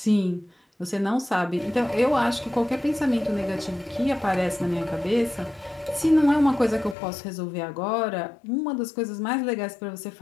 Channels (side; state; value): right; drops out; at 7.0 s